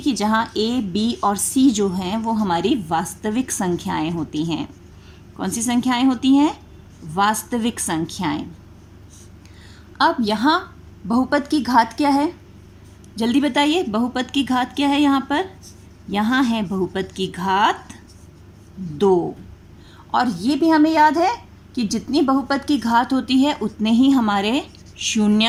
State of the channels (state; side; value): identical; both; correlation 1.00